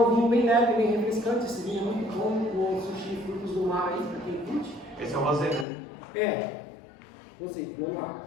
vinho bem leve, bem refrescante, esse vinho muito bom, com sushi frutos do mar aí, para quem curte. Esse é o rosé, né? É, rosé, Pinot Noir.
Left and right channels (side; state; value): right; drops out; at 5.7 s